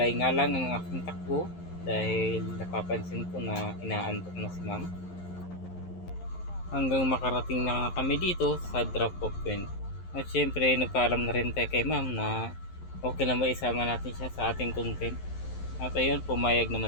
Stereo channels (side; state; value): right; late; 11 ms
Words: nga lang ang aking takbo dahil napapansin ko na inaantok na si ma'am. Hanggang makarating na kami dito sa drop off point. At syempre nagpaalam na rin tayo kay ma'am na okay lang ba isama natin siya sa ating content. At ayun, pumayag